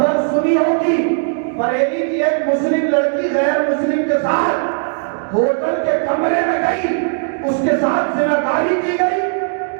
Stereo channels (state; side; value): silent; left; digital silence